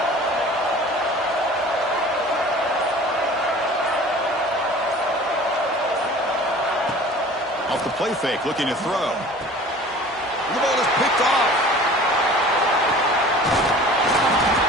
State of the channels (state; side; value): normal; both; correlation 0.44